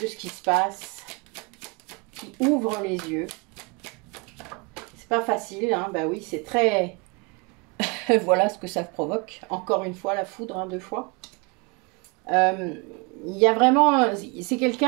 ce qui se passe, qui ouvre les yeux. C'est pas facile, hein, bah oui, c'est très... voilà ce que ça provoque. Encore une fois, la foudre, hein, 2 fois. Il y a vraiment... C'est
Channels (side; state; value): left; quieter; 29.9 dB